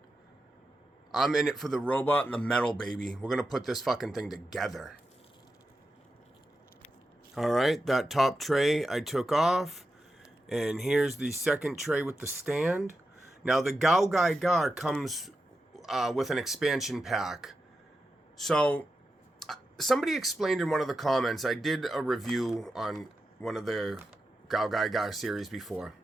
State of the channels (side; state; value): both; normal; correlation 0.89